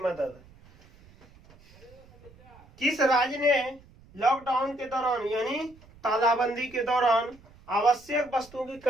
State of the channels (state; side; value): noise; right; rumble, 25 dB below the sound